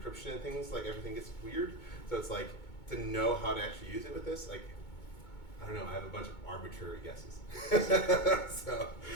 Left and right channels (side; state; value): right; late; 2.2 ms